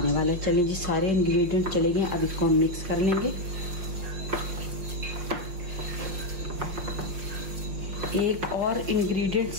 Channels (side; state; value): left; late; 5.6 ms